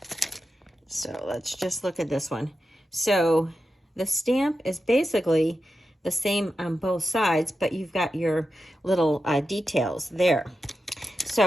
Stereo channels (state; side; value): normal; both; correlation 0.90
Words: So let's just look at this one. So the stamp is basically the same on both sides, but you've got your little details there.